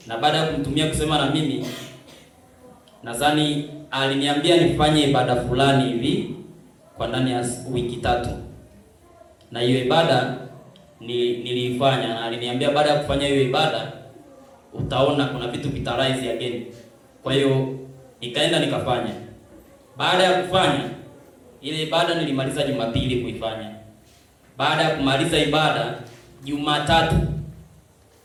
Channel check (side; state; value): both; identical; correlation 1.00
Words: Na baada ya kumtumia kusema na mimi, nadhani aliniambia nifanye ibada fulani hivi kwa ndani ya wiki 3. Na hiyo ibada niliifanya, na aliniambia baada ya kufanya hiyo ibada utaona kuna vitu vitarise again. Kwa hiyo nikaenda nikafanya. Baada ya kufanya ile ibada nilimaliza Jumapili kuifanya. Baada ya kumaliza ibada Jumatatu